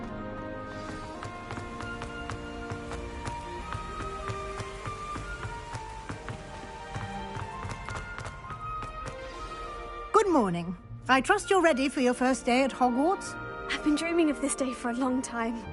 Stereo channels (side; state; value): both; identical; correlation 1.00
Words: Good morning. I trust you're ready for your first day at Hogwarts? I've been dreaming of this day for a long time.